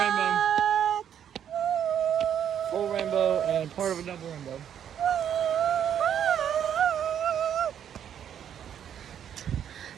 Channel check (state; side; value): quieter; left; 9.2 dB